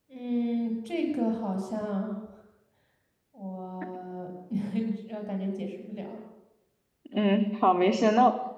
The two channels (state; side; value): identical; both; correlation 1.00